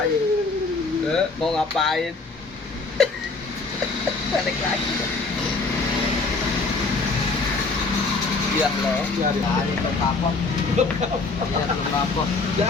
Mau ngapain? Balik lagi. Iya loh. Iya, iya. Nah, ini belum kapok. Iya belum kapok.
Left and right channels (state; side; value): quieter; right; 3.9 dB